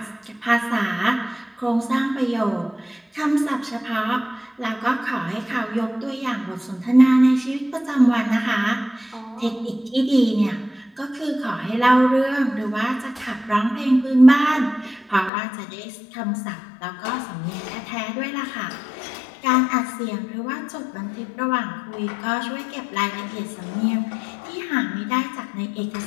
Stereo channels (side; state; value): right; drops out; at 15.3 s